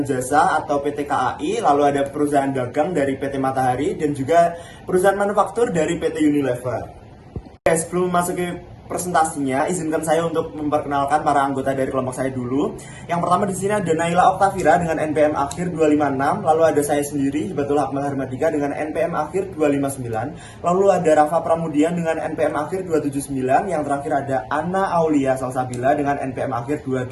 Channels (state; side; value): identical; both; correlation 1.00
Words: jasa atau PT KAI, lalu ada perusahaan dagang dari PT Matahari dan juga perusahaan manufaktur dari PT Unilever. Oke, sebelum memasuki presentasinya, izinkan saya untuk memperkenalkan para anggota dari kelompok saya dulu. Yang pertama di sini ada Naila Oktavira dengan NPM akhir 256, lalu ada saya sendiri, Hibatul Akmal Harmadika dengan NPM akhir 259, lalu ada Rafa Pramudian dengan NPM akhir 279, yang terakhir ada Anna Aulia Salsabila dengan NPM akhir